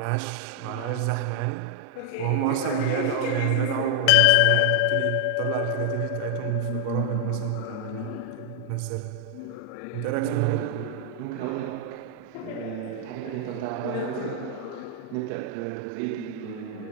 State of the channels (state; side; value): different; both; correlation 0.00